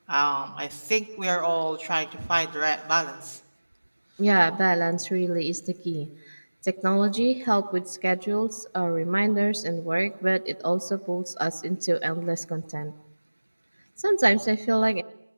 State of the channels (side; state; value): both; inverted; correlation -1.00